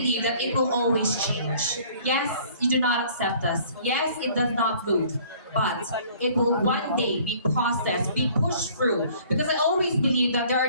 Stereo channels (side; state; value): both; inverted; correlation -0.55